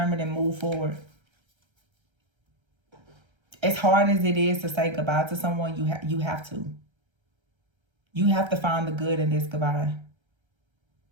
and move forward. As hard as it is to say goodbye to someone, you have to. You have to find the good in this goodbye.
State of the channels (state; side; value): late; left; 1.3 ms